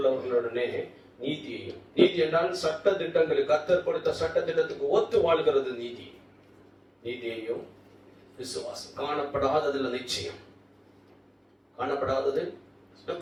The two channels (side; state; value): both; identical; correlation 1.00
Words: நீதியையும், நீதி என்றால் சட்ட திட்டங்களுக்கு, கர்த்தர் கொடுத்த சட்ட திட்டத்துக்கு ஒத்து வாழ்கிறது நீதி. நீதியையும் விசுவாசம், காணப்படாததுல நிச்சயம், காணப்படாதது